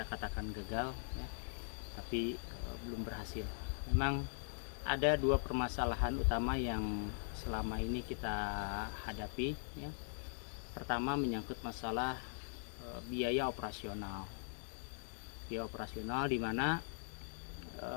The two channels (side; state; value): right; silent; 50 dB below the other